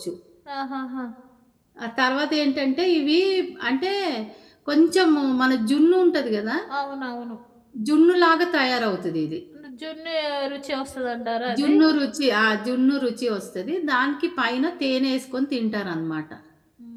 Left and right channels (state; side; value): identical; both; correlation 1.00